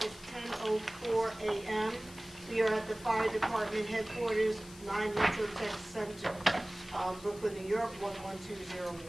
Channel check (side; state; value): left; noise; hiss, 19 dB below the sound